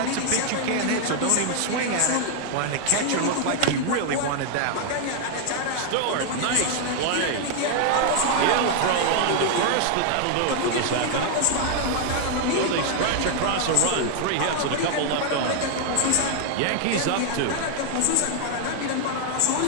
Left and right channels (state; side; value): different; both; correlation 0.00